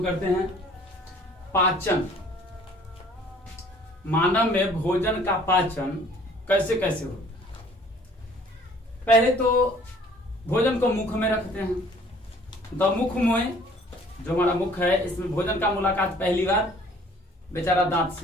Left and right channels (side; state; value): both; normal; correlation 0.55